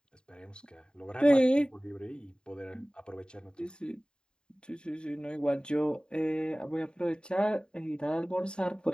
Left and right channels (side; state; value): right; late; 0.049 ms